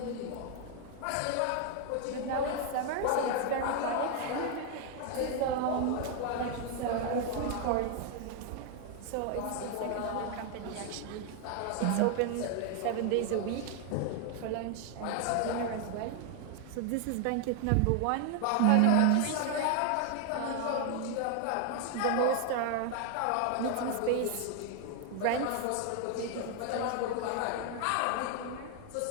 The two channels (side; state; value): both; different; correlation 0.00